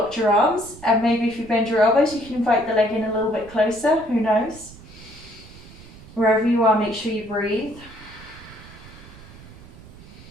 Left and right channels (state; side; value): noise; right; rumble, 19 dB below the sound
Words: your arms, and maybe if you bend your elbows, you can invite the leg in a little bit closer, who knows? Wherever you are, make sure you breathe.